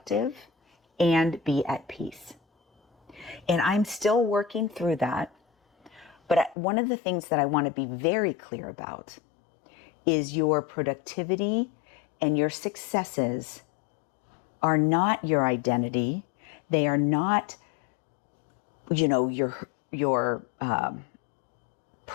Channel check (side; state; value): right; drops out; at 6.6 s